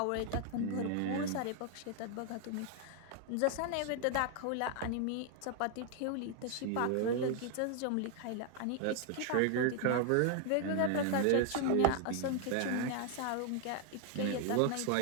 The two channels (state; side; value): different; both; correlation 0.00